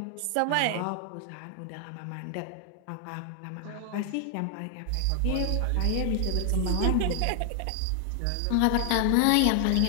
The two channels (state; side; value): different; both; correlation 0.00